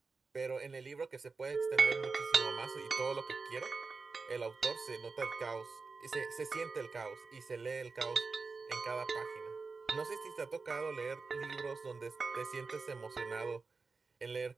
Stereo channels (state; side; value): quieter; left; 4.3 dB